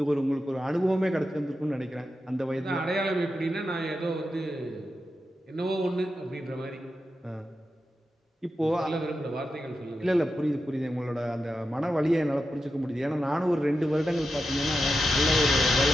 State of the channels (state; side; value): normal; both; correlation 0.89